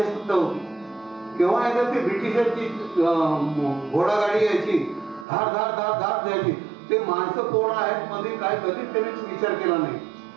होती. केव्हा एकदा ते ब्रिटिशांची घोडागाडी यायची, धार धार धार धार द्यायची ते माणसं कोण आहेत मध्ये काय कधीच त्यांनी विचार केला नाही.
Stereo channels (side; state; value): left; drops out; at 5.2 s